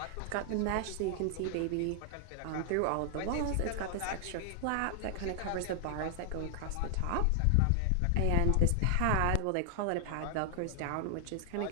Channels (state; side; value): different; both; correlation 0.00